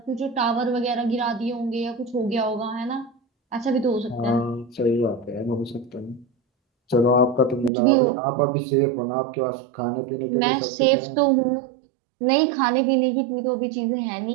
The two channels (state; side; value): drops out; left; at 7.7 s